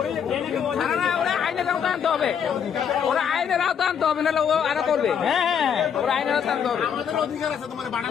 ওরা আইনের আওতা আনতে হবে, ওরা আইনের আওতা আনতে হবে, নাহলে ও আরো করবে। হ্যাঁ ওরা আইনের আওতা আনতে হবে,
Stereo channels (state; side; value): quieter; right; 7.7 dB